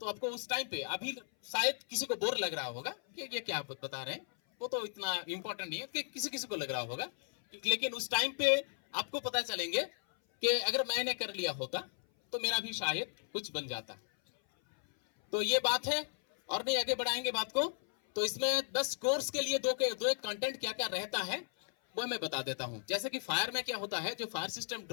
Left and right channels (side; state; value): right; silent; 54 dB below the other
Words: तो आपको उस टाइम पे, अभी शायद किसी को बोर लग रहा होगा कि ये क्या बता रहे हैं, वो तो इतना इंपॉर्टेंट नहीं है कि किसी को लग रहा होगा, लेकिन उस टाइम पे आपको पता चलेंगे कि अगर मैंने कर लिया होता तो मेरा भी शायद कुछ बन जाता। तो ये बात है, और नहीं आगे बढ़ाएंगे बात को। तो इसमें 10 कोर्स के लिए दो एक कंटेंट क्या क्या रहता है वो मैं बता देता हूं। जैसे कि फायर में क्या होता है, जो fire system